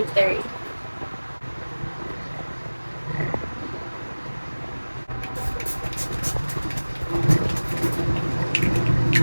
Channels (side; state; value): both; inverted; correlation -1.00